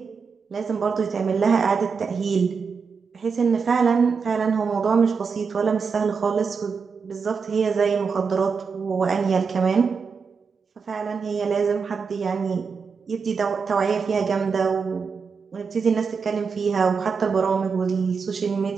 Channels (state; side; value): quieter; left; 5.5 dB